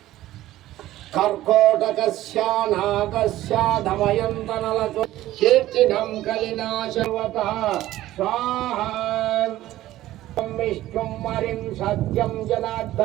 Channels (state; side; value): quieter; left; 15.0 dB